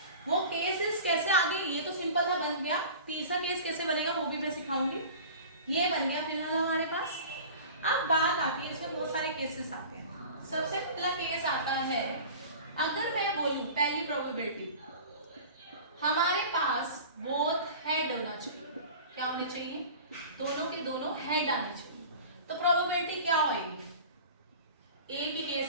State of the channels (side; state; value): both; inverted; correlation -0.39